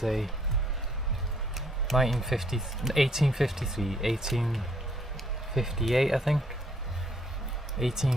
1853, 1858 I think,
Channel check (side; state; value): both; normal; correlation 0.66